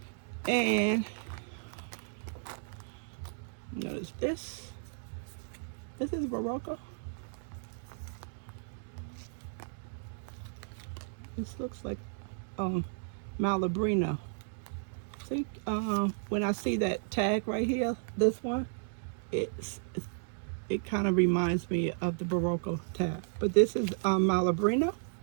And notice this. This is Barocco. This looks like Malabrino. See, when I see that tag right here, this one, it kind of reminds me of the Barocco tag. But this is Malabrino.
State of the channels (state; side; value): silent; left; digital silence